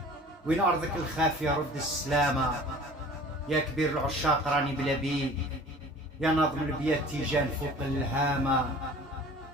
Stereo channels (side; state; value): both; normal; correlation 0.45